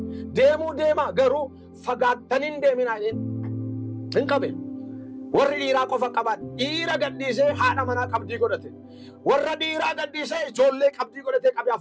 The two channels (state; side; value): identical; both; correlation 1.00